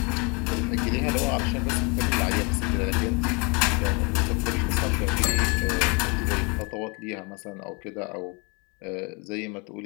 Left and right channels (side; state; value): right; quieter; 31.4 dB